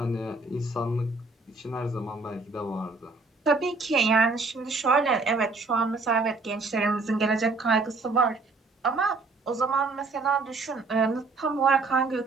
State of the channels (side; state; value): left; quieter; 3.7 dB